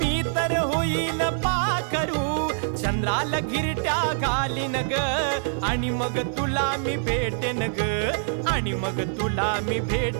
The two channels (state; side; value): silent; left; digital silence